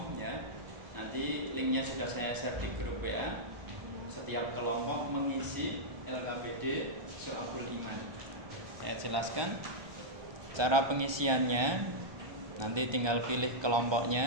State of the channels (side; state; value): left; late; 1.3 ms